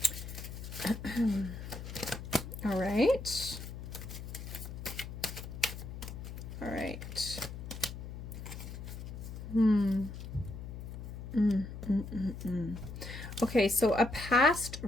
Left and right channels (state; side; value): noise; left; hum, 9 dB below the sound